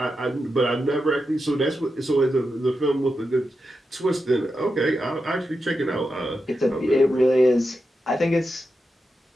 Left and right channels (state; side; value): normal; both; correlation 0.88